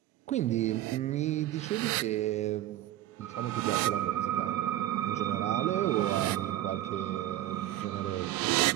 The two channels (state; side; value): quieter; left; 13.6 dB